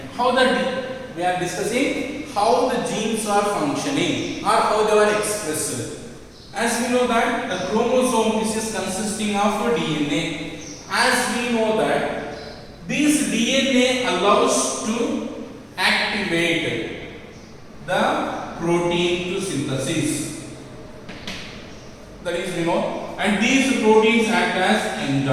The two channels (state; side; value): identical; both; correlation 1.00